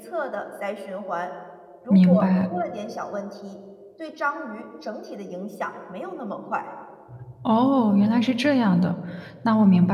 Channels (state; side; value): identical; both; correlation 1.00